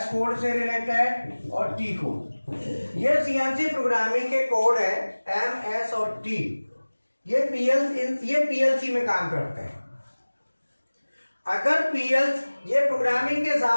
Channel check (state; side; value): inverted; both; correlation -1.00